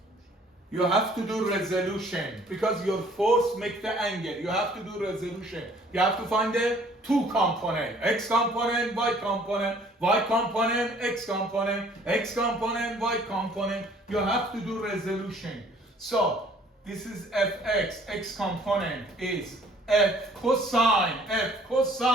You have to do resolution because your force makes the angle. You have to do resolution. You have to find the two component, x component, y component, y component, x component, x component, y component. You have to do resolution. So this is fx, x component is f cosine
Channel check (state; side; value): normal; both; correlation 0.57